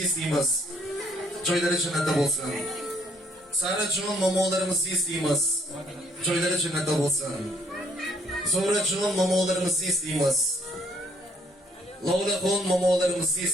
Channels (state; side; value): normal; both; correlation 0.66